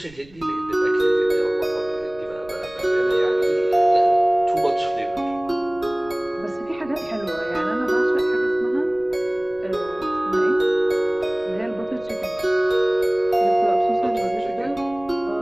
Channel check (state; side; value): noise; right; rumble, 24 dB below the sound